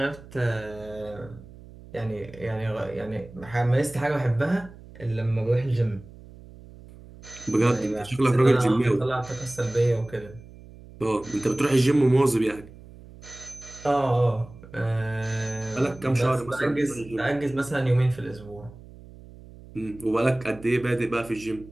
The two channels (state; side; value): noise; right; hum, 19 dB below the sound